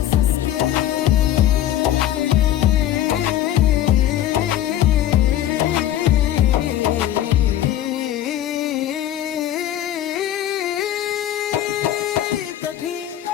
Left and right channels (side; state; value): right; quieter; 12.0 dB